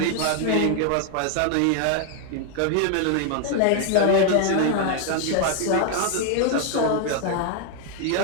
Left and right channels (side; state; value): both; different; correlation 0.00